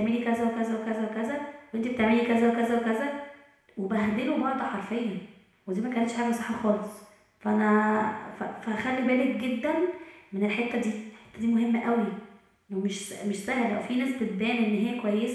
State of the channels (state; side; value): identical; both; correlation 1.00